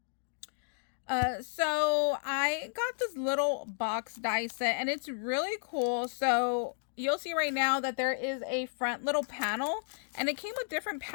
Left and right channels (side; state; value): right; silent; digital silence